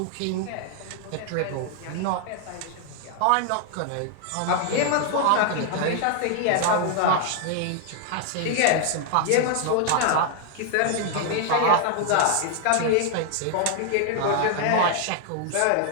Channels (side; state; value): both; different; correlation 0.00